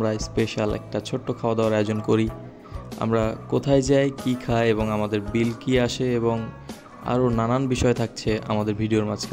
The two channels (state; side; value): identical; both; correlation 1.00